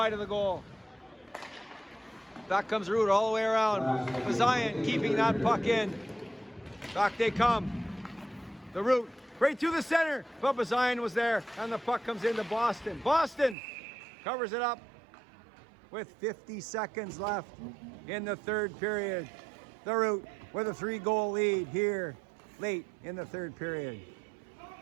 of the goal. Back comes Root all the way around. Bazayan keeping that puck in. Back they come. The Root right through the center. But Bazayan was there. And the puck comes into Boston. Boston covers it up with 50 seconds left in the third period. The Root with a 3-goal lead here late in the third period.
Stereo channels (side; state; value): left; drops out; at 13.6 s